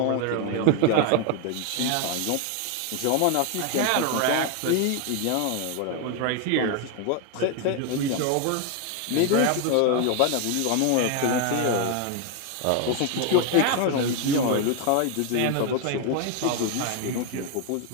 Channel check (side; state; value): both; different; correlation 0.01